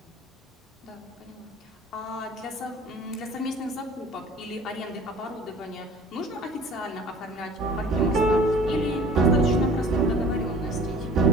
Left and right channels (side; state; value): both; normal; correlation 0.47